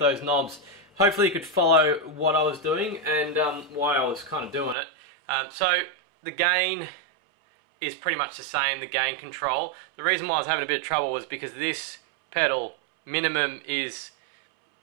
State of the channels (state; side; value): drops out; left; at 4.8 s